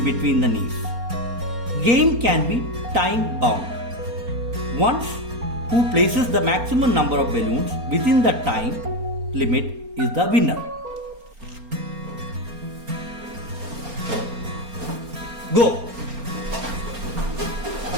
between the knees. Game can be time bound. Once who places the maximum number of balloons within the time limit is the winner. Go!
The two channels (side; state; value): left; late; 4.3 ms